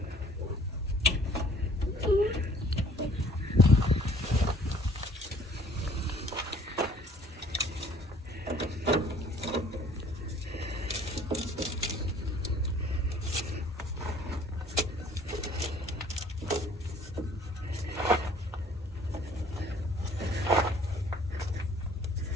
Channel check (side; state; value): both; normal; correlation 0.56